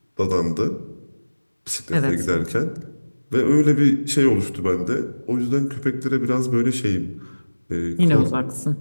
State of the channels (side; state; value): both; inverted; correlation -1.00